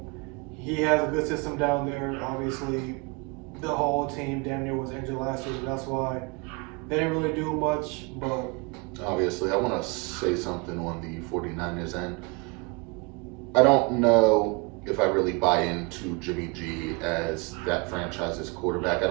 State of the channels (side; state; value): left; quieter; 28.6 dB